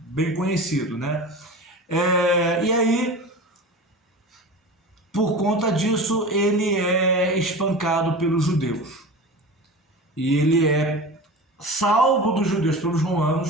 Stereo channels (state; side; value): normal; both; correlation 0.32